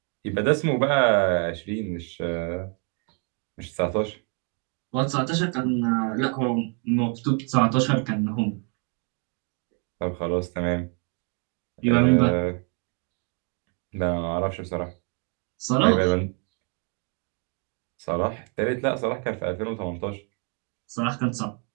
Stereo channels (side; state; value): left; quieter; 37.9 dB